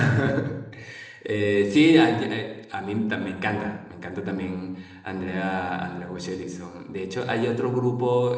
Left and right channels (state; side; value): identical; both; correlation 1.00